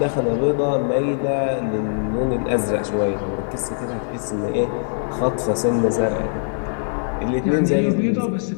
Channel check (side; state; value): right; silent; digital silence